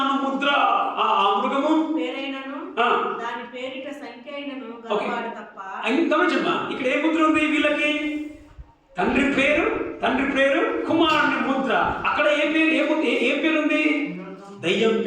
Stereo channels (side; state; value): both; identical; correlation 1.00